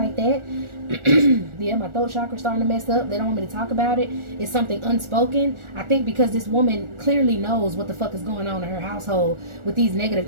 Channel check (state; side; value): late; left; 1.4 ms